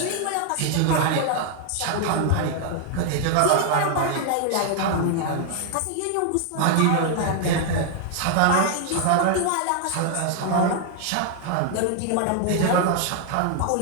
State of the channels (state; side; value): different; both; correlation 0.00